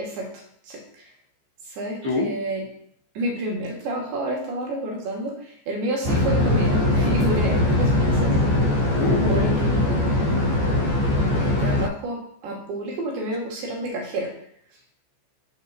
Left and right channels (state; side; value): late; left; 14 ms